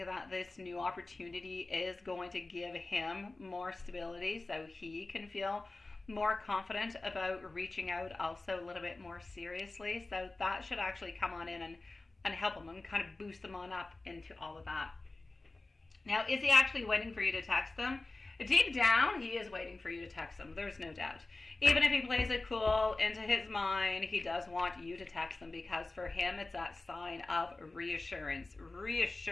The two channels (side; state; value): right; quieter; 3.2 dB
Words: this new opportunity is going to give him more stability so he can feel more confident about reaching out also a little bit more seriously. So that should actually come on in and help him and kind of boost him on up into all of that. Now, is he actually waiting for you to text him? Deep down, he is waiting for you to text him. There's no doubt. Even if he plays it cool, into his mind, he does want you to text him, because for him, it's that sign of reassurance,